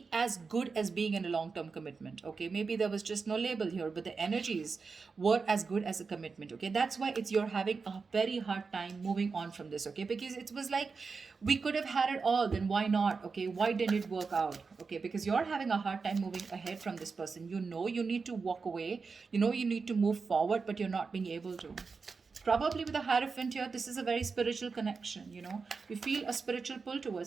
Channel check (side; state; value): left; quieter; 4.8 dB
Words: as good as being in a long term commitment, okay? Maybe there was just no label here, but the energies were as good as a commitment, okay? That's why it's you're having a very hard time moving on from this, okay? Because it was like, we could have had it all, then why not? Okay, why didn't it work out? Okay, because you're having a hard time moving ahead from this person. You know you need to walk away, you know you need to move forward, but you're not being able to. Probably with a Hierophant here, this is a very spiritual connection, you know. You feel a spiritual pull